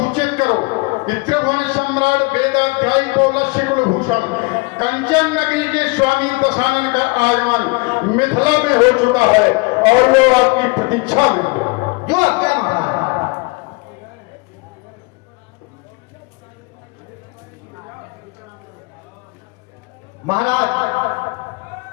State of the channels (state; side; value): quieter; right; 27.0 dB